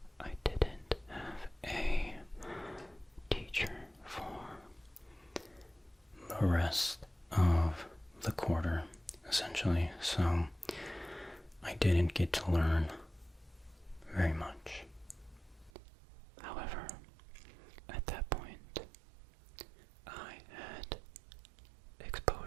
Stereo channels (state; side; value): drops out; left; at 15.7 s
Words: I didn't have a teacher for the rest of the quarter, essentially. So I didn't get to learn very much. However, at that point, I had